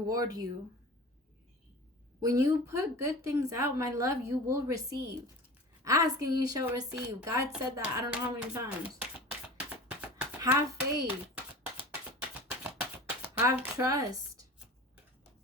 you. When you put good things out, my love, you will receive. Ask and you shall receive. God said that I don't know how many times. Have faith. Have trust.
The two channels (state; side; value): normal; both; correlation 0.37